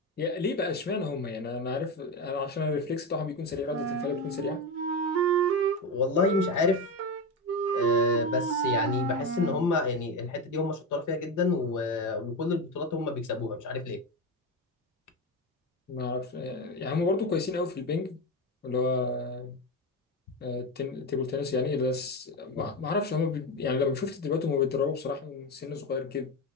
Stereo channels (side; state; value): both; normal; correlation 0.17